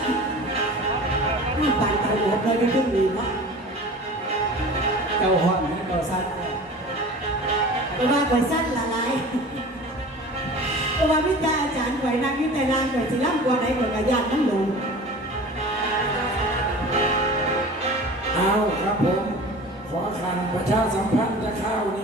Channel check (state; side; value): normal; both; correlation 0.39